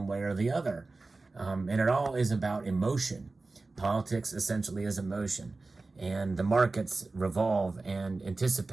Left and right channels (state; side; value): quieter; left; 3.5 dB